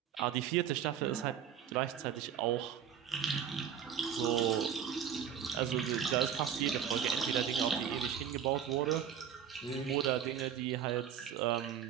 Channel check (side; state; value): left; quieter; 8.6 dB